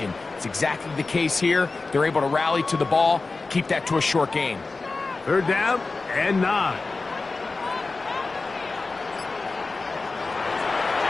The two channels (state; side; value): quieter; right; 3.7 dB